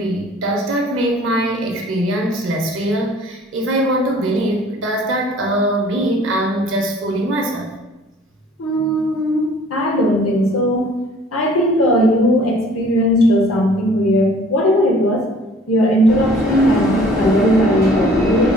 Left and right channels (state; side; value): normal; both; correlation 0.53